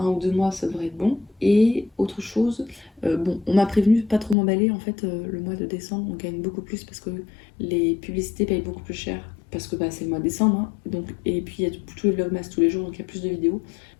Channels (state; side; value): drops out; right; at 4.4 s